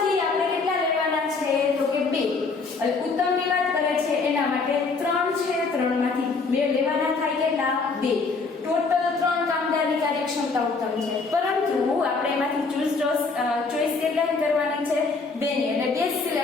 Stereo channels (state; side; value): quieter; right; 4.3 dB